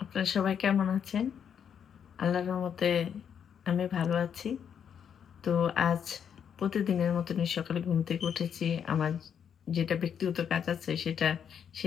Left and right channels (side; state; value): right; quieter; 8.0 dB